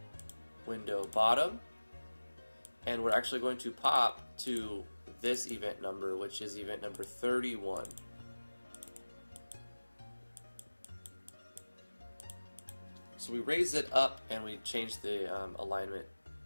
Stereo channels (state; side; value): inverted; both; correlation -1.00